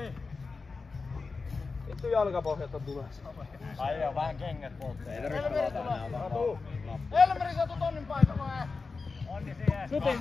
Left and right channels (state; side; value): quieter; right; 4.3 dB